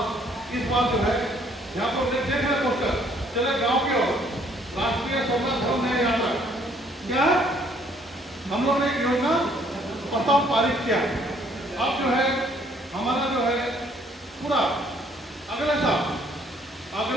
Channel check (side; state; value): both; normal; correlation 0.63